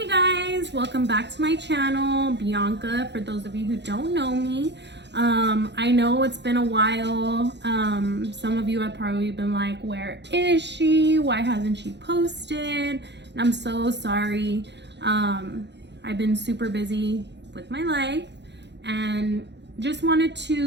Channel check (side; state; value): left; late; 0.51 ms